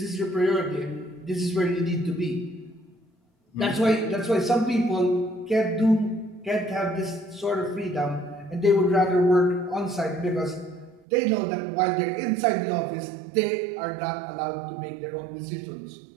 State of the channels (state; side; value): drops out; left; at 11.0 s